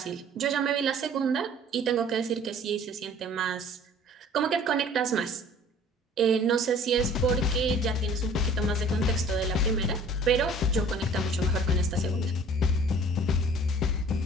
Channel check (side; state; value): both; normal; correlation 0.50